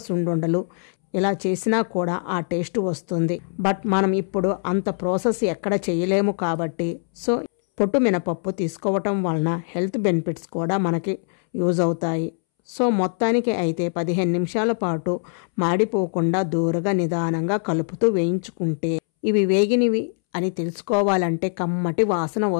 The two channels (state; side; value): silent; right; 64 dB below the other